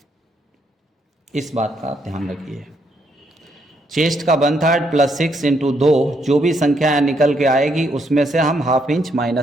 इस बात का ध्यान रखिए। चेस्ट का 1/3 + 6 × 2, जो भी संख्या निकल के आएगी उसमें से हम ½ इंच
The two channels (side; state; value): both; normal; correlation 0.74